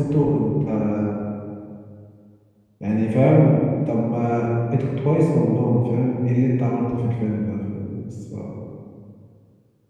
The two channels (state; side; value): identical; both; correlation 1.00